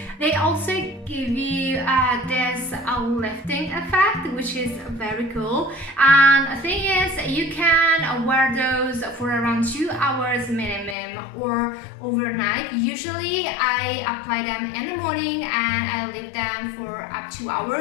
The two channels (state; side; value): drops out; right; at 11.0 s